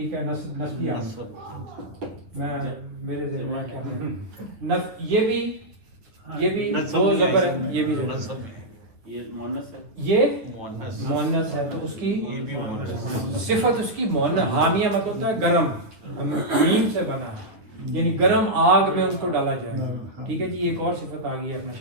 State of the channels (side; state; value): left; late; 9.5 ms